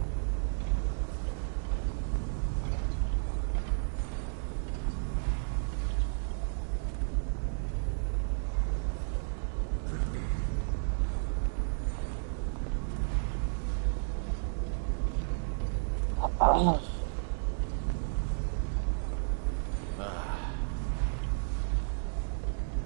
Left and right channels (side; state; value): left; silent; digital silence